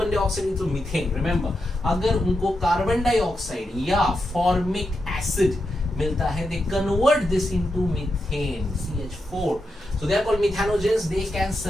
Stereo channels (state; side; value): normal; both; correlation 0.86